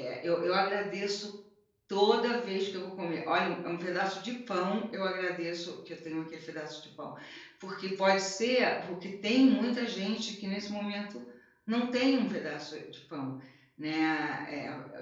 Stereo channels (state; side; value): identical; both; correlation 1.00